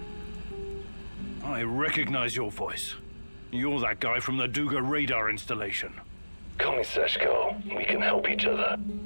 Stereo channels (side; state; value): both; inverted; correlation -1.00